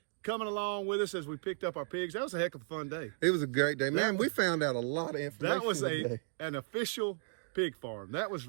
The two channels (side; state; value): left; silent; digital silence